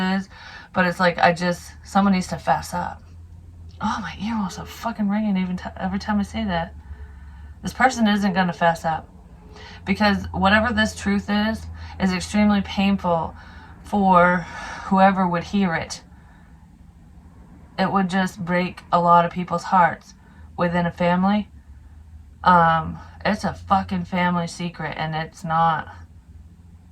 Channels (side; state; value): both; identical; correlation 1.00